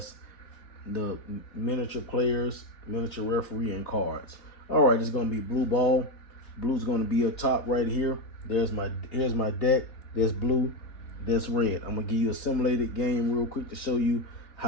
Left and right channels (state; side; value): late; right; 3.2 ms